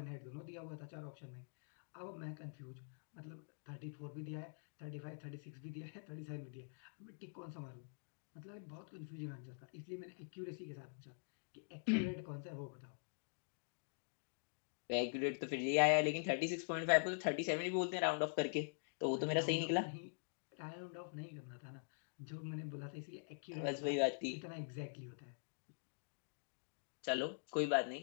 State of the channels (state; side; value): silent; right; digital silence